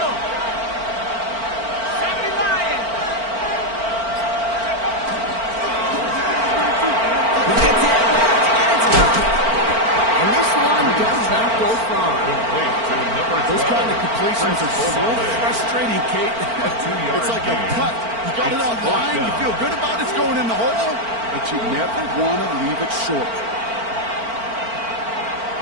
70 Lions. He gets it left, and it's gone. And this one does not go far. Those kind of completions are so frustrating, Kate. It's like a putt. You got it on line, you feel good about it's going in the hole, but you never want to leave it short.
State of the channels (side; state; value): left; late; 4.4 ms